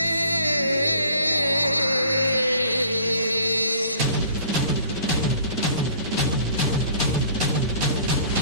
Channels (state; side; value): inverted; both; correlation -0.52